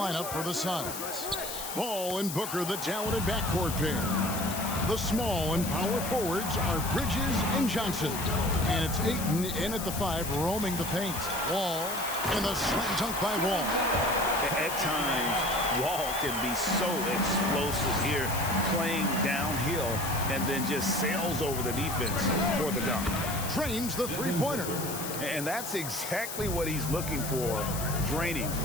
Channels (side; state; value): left; noise; hiss, 7 dB below the sound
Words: for the Suns. Ball and Booker, the talented backcourt pair. The small and power forwards are Bridges and Johnson. And it's Ayton in at the 5, roaming the paint. Wall and the slam dunk by Wall. At times, Wall can be so explosive here, playing downhill, and then just sails over the defense for the dunk. Drains the three-pointer. And that's exactly what he's looking for, draining